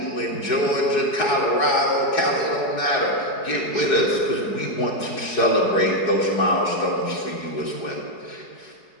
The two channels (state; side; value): late; right; 4.7 ms